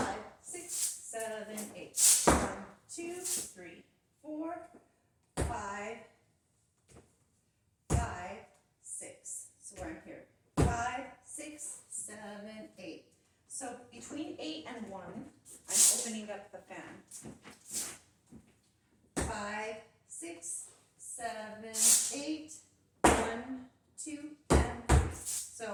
6, 7, 8. 1, 2, 3, 4, 5, 6. So where I'm here. 5, 6, 7, 8. So between 8 and 1, I'm opening up the fan. 5, 6, 7, 8, 1, 2, and 3.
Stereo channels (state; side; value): identical; both; correlation 1.00